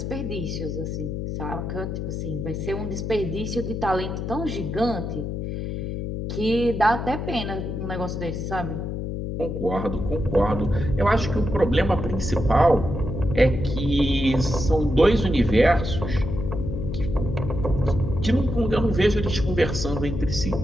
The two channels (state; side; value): noise; left; hum, 4 dB below the sound